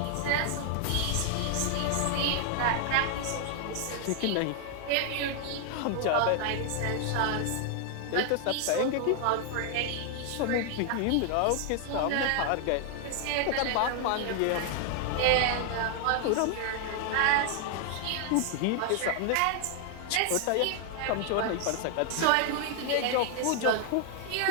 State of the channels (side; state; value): both; different; correlation 0.00